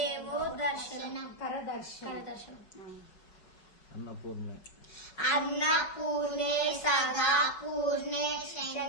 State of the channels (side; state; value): right; late; 5.6 ms